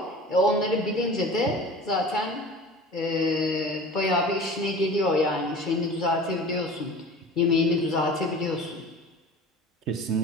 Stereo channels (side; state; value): both; normal; correlation 0.39